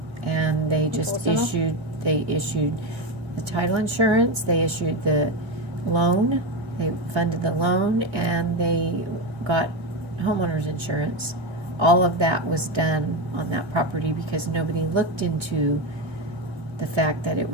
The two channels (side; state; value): left; late; 1.7 ms